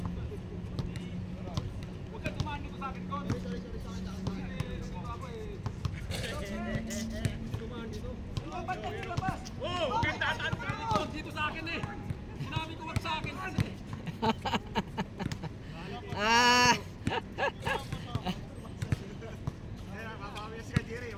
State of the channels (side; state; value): both; identical; correlation 1.00